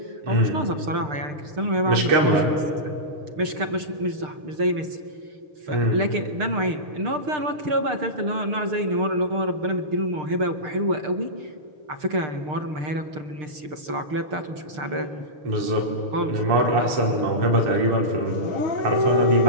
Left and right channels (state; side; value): late; left; 6.6 ms